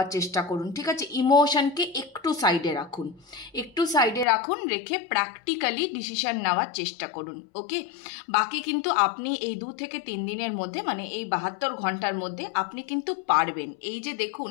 চেষ্টা করুন, ঠিক আছে? ইমোশনকে একটু সাইডে রাখুন, রেখে প্র্যাকটিক্যালি ডিসিশন নেওয়ার চেষ্টা করুন। ওকে, বাকি কিন্তু আপনি এই 2 থেকে 3 দিনের মধ্যে, মানে এই 72 ঘন্টার মধ্যে আপনি কিন্তু পারবেন। এই যে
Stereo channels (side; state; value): right; drops out; at 4.2 s